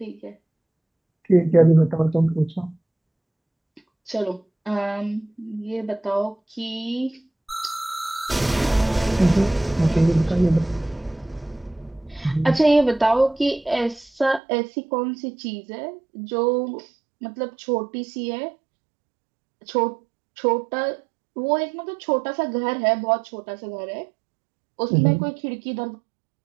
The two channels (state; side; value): drops out; left; at 14.4 s